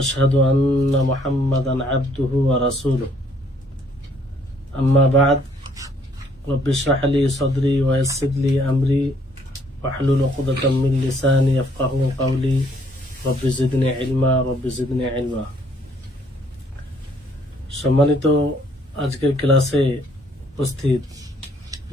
أن محمدا عبده ورسوله. أما بعد رب اشرح لي صدري ويسر لي أمري واحلل عقدة من لساني يفقهوا قولي رب زدني علما رب زدني علما. সম্মানিত আজকের ক্লাসে উপস্থিত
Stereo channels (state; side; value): normal; both; correlation 0.64